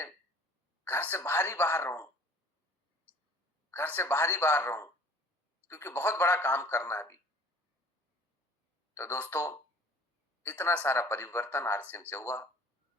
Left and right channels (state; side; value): normal; both; correlation 0.49